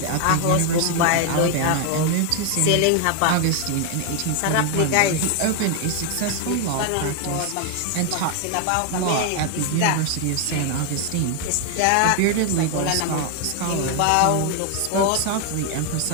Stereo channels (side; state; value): both; different; correlation 0.01